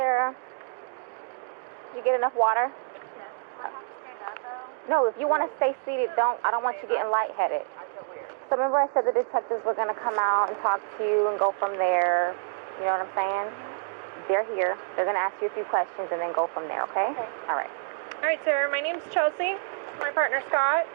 Did you get enough water? Do I have to stand up, though? No, if you want to stay seated, I don't want you getting lightheaded. I feel weird. So remember I said the detectives were going to come out and talk to you and go from there. You know what I'm saying? They're here. They're going to ask you a few questions and then go from there, okay? Okay. All right. All right, Sarah, my name's Chelsea. My partner, Scott.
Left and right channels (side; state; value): left; silent; digital silence